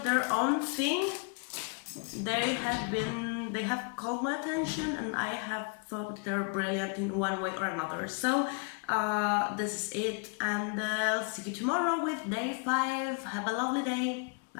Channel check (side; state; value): right; quieter; 36.5 dB